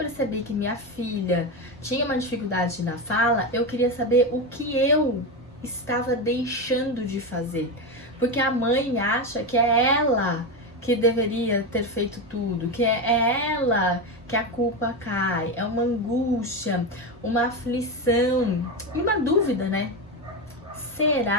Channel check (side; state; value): both; normal; correlation 0.15